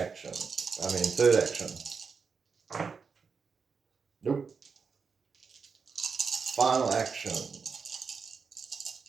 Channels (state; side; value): quieter; left; 5.4 dB